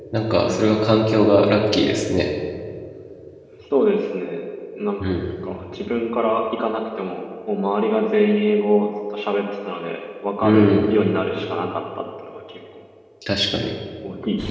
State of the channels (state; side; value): identical; both; correlation 1.00